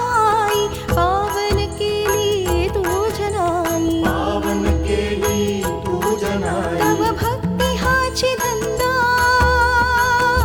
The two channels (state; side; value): identical; both; correlation 1.00